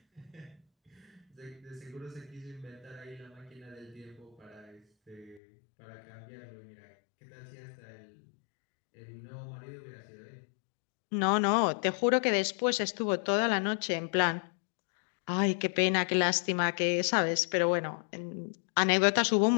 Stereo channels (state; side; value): drops out; right; at 5.4 s